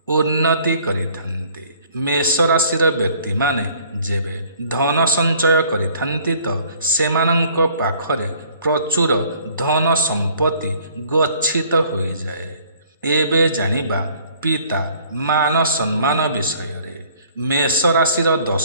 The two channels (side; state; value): both; inverted; correlation -0.57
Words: ଉନ୍ନତି କରିଥାନ୍ତି। ମେଷ ରାଶିର ବ୍ୟକ୍ତିମାନେ ଯେବେ ଧନ ସଞ୍ଚୟ କରିଥାନ୍ତି ତ ସେମାନଙ୍କ ପାଖରେ ପ୍ରଚୁର ଧନ ସମ୍ପତ୍ତି ଗଚ୍ଛିତ ହୋଇଯାଏ। ଏବେ ଜାଣିବା ପିତା ମାନ ସମ୍ମାନ ବିଷୟରେ। ମେଷ ରାଶିର